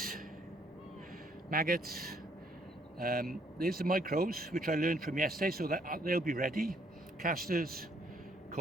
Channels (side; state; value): both; normal; correlation 0.67